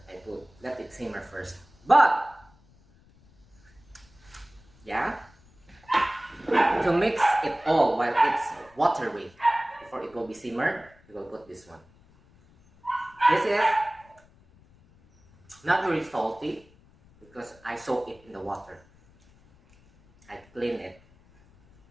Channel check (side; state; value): left; noise; rumble, 28 dB below the sound